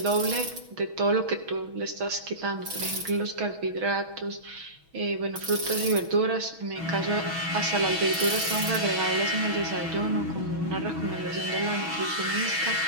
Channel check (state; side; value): late; left; 6.2 ms